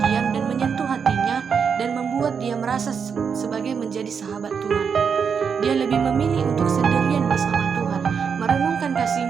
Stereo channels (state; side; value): quieter; left; 6.4 dB